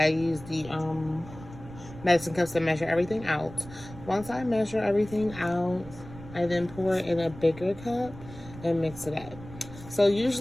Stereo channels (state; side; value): noise; right; rumble, 16 dB below the sound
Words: use the medicine cups to measure everything out. Once I measure everything out, I then pour it in a bigger cup and mix it up. So